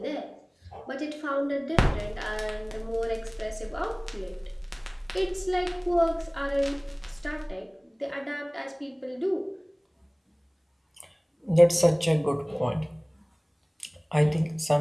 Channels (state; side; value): identical; both; correlation 1.00